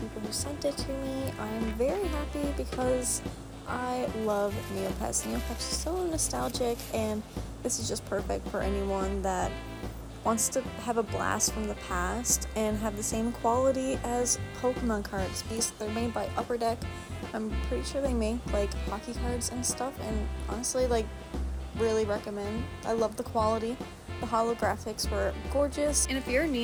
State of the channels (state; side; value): identical; both; correlation 1.00